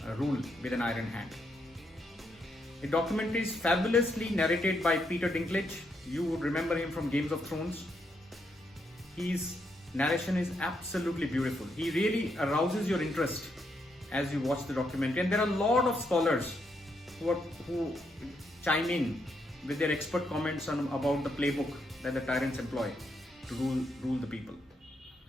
rule with an iron hand. The documentary is fabulously narrated by Peter Dinklage. You would remember him from Games of Thrones. His narration is absolutely beautiful. He really arouses your interest as you watch the documentary. And there are a lot of scholars who chime in with their expert comments about the playbook that the tyrants employ to rule the people.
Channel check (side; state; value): both; normal; correlation 0.78